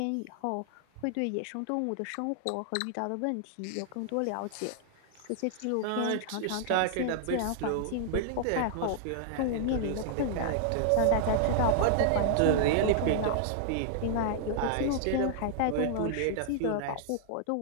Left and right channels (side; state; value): both; different; correlation -0.01